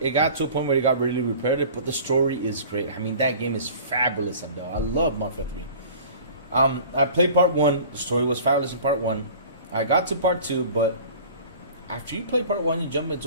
it got to a point where it got really repetitive, but the story is great. I mean, that game is fabulous, Adele. I love Mafia 3. I played part 1. The story was fabulous in part 1. I got to part 2, but after you play part 1, you jump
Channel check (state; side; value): inverted; both; correlation -0.44